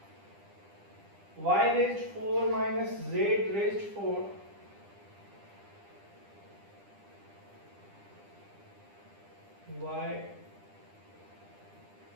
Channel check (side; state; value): left; late; 9.9 ms